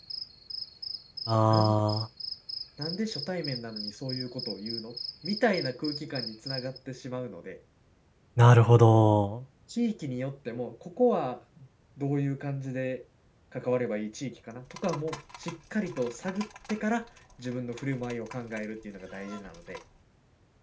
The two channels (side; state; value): both; identical; correlation 1.00